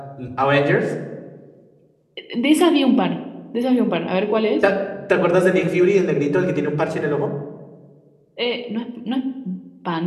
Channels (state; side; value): identical; both; correlation 1.00